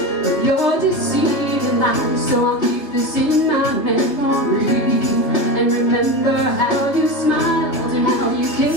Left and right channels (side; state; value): right; late; 3.3 ms